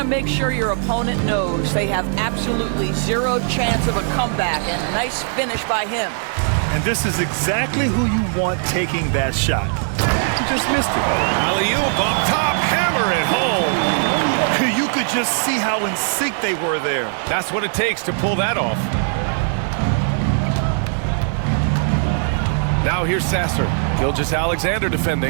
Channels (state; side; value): silent; left; digital silence